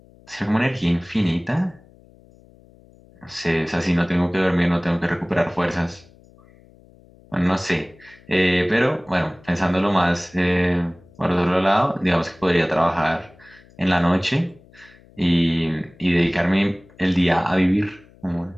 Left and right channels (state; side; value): noise; left; hum, 27 dB below the sound